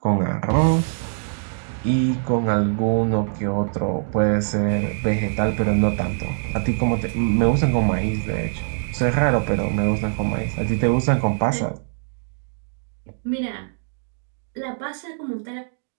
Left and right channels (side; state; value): left; silent; 64 dB below the other